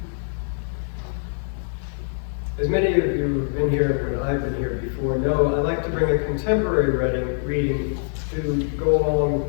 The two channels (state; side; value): silent; right; digital silence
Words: As many of you who've been here when I've been here before know, I like to bring a contemporary reading to go along